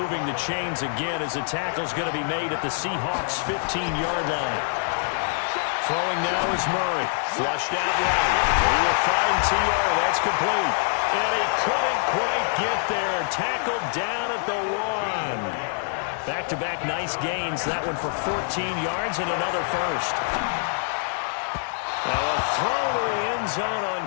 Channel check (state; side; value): silent; right; digital silence